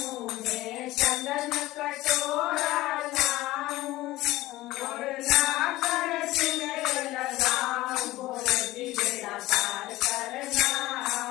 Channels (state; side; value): quieter; right; 17.5 dB